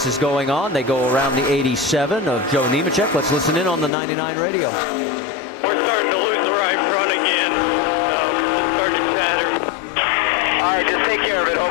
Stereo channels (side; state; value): right; drops out; at 3.9 s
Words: is going on, they go around the 87 of Joe Nemechek. Let's listen in on the 99 radio. We're starting to lose the right front again. It's starting to chatter. All right, just take care of it.